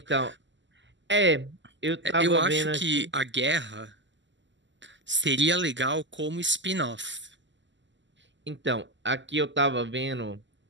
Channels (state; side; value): late; left; 0.54 ms